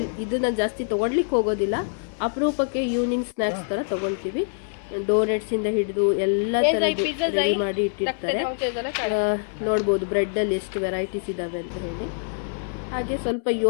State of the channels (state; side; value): silent; right; 62 dB below the other